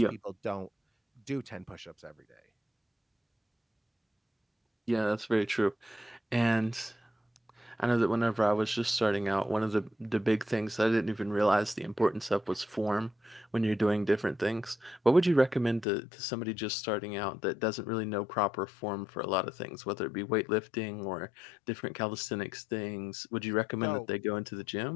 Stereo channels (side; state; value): right; drops out; at 15.9 s